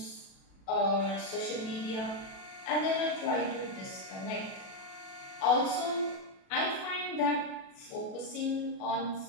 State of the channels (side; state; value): right; late; 37 ms